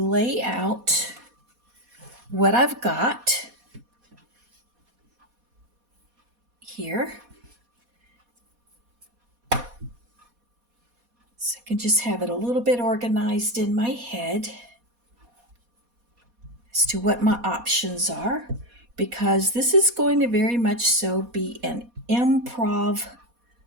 out what I've got here. So I can just have it a little bit organized in my head as to what my options are, because this is going to very much so be an improv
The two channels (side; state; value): left; late; 4.2 ms